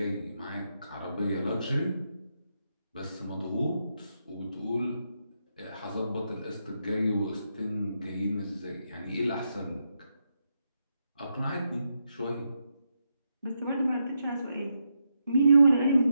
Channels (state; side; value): inverted; both; correlation -0.83